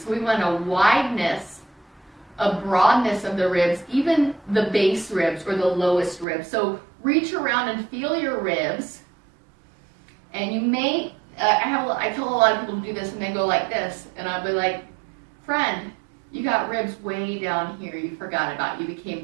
So we want a wideness, a broadness of the ribs, even the base ribs or the lowest ribs. So reach around and feel your ribs. And you may, I tell a lot of people to do this and they go like this. And I'll be like, friend, you got ribs way down here you forgot about. You became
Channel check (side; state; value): left; drops out; at 6.2 s